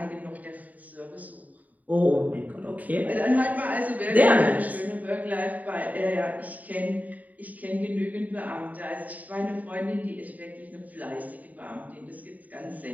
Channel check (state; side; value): late; left; 0.075 ms